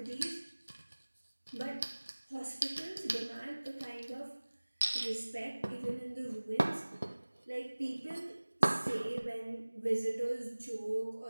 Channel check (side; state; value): both; inverted; correlation -1.00